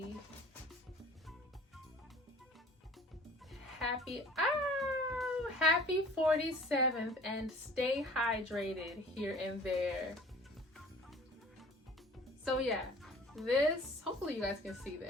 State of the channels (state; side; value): normal; both; correlation 0.47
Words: happy 47th and stay hydrated here and there. So yeah, this, hopefully you guys can see